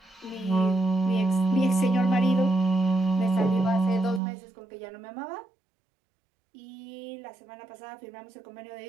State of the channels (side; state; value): left; drops out; at 4.2 s